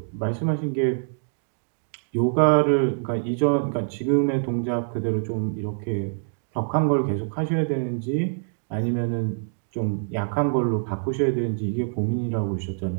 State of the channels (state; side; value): silent; left; digital silence